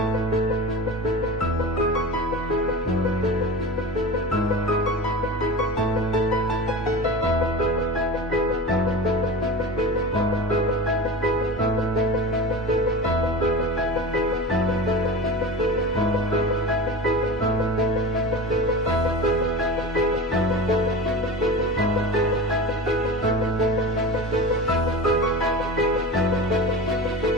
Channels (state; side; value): normal; both; correlation 0.30